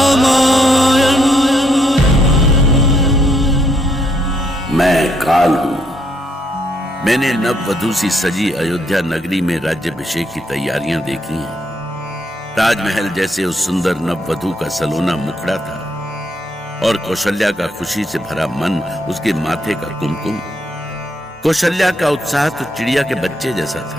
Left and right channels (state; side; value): normal; both; correlation 0.73